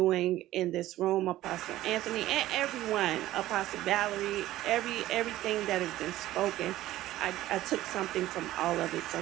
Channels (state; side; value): quieter; left; 15.1 dB